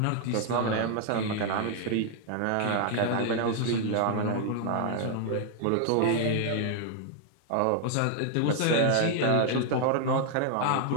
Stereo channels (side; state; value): both; different; correlation 0.00